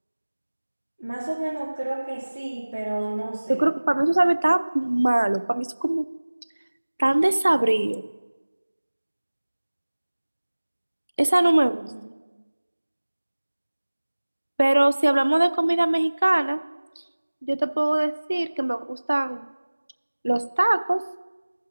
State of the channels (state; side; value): inverted; both; correlation -1.00